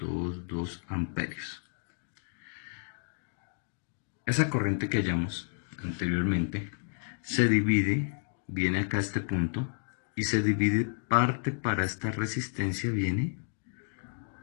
amperios. Esa corriente que hallamos anteriormente se divide, viene acá a este punto y se divide, parte para esta resistencia viene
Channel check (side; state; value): right; silent; digital silence